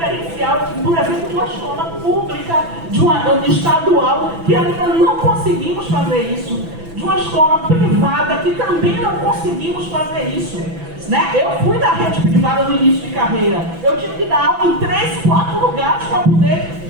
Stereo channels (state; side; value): late; left; 6.0 ms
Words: por exemplo, de uma escola pública, de uma estadual, que ainda não conseguimos fazer isso. De uma escola privada, que também não conseguimos fazer isso. Né? Eu fui da rede privada no início de carreira. Eu tive que dar aula em 3, 4 lugares para poder